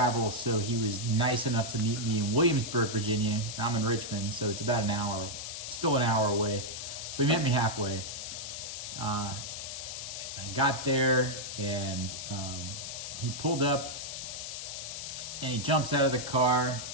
so he was nice enough to meet me in Williamsburg, Virginia. I'm in Richmond, so it's about still an hour away. So he met me halfway. I got there, and he pulled up, and he jumps out of the car,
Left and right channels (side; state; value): left; noise; hiss, 7 dB below the sound